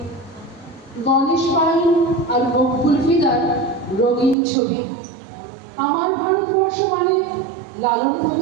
গণেশ পাইন আর মকবুল ফিদার রঙিন ছবি। আমার ভারতবর্ষ মানে লালন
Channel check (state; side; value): drops out; left; at 4.4 s